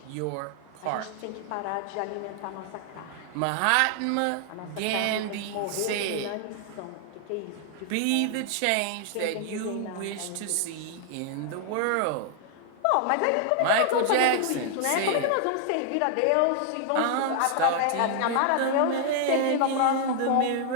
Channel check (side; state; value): both; different; correlation 0.00